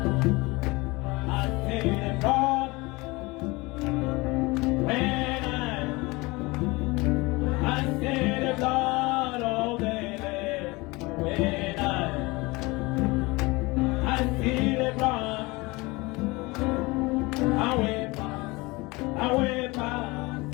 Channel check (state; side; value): quieter; right; 23.8 dB